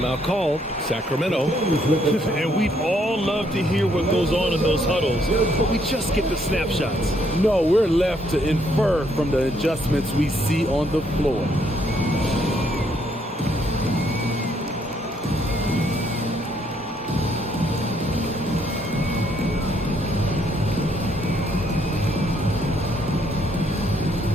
called. Sacramento. And we'd all love to hear what goes on in those huddles, but we just get the snapshots. No, we're left to infer from the adjustments we see on the floor.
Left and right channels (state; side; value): normal; both; correlation 0.70